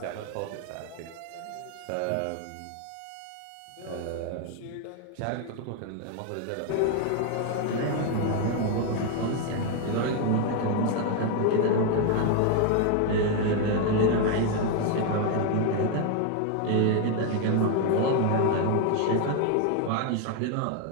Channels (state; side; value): different; both; correlation 0.01